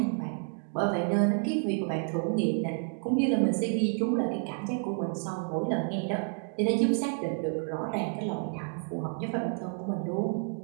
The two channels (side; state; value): left; silent; 55 dB below the other